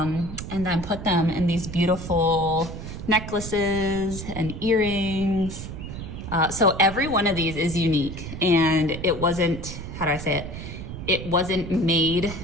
then put them in these beautiful necklaces and earrings. So every one of these is unique, and it wasn't, how do I say it? It wasn't made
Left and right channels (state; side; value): noise; right; rumble, 9 dB below the sound